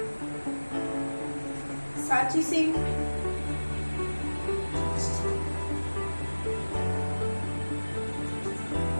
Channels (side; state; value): both; inverted; correlation -1.00